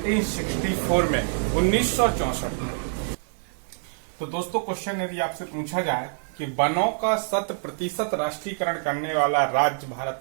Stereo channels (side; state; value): left; silent; 61 dB below the other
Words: में, 1964 में। तो दोस्तों क्वेश्चन यदि आपसे पूछा जाए कि वनों का 100% राष्ट्रीयकरण करने वाला राज्य भारत